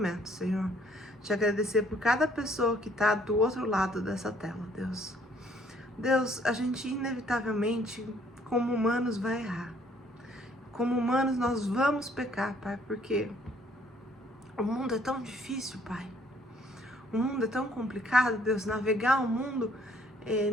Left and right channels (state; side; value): normal; both; correlation 0.63